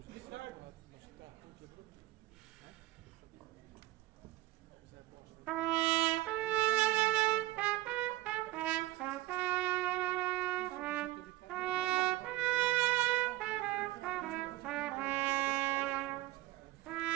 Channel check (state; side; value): quieter; left; 18.0 dB